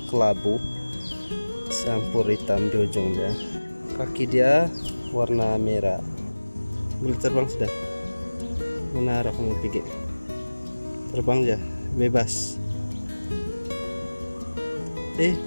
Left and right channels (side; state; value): both; inverted; correlation -1.00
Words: kelabu campur hitam di ujung dia. Kaki dia warna merah. Boleh terbang sudah. Mana arah kamu pergi? Terbang ya, bebas.